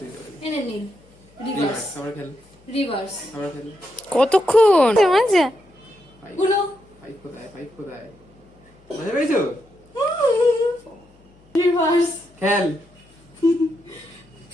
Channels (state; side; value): noise; left; hum, 30 dB below the sound